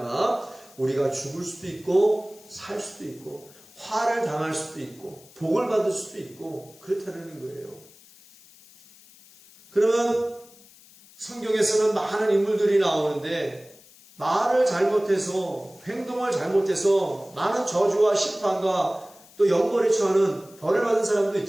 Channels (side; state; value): left; noise; hiss, 24 dB below the sound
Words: 우리가 죽을 수도 있고 살 수도 있고 화를 당할 수도 있고 복을 받을 수도 있고 그렇다는 거예요. 그러면 성경에서는 많은 인물들이 나오는데 말을 잘못해서 행동을 잘못해서 많은 저주와 심판과 또 영벌에 처하는 벌을 받은 사람도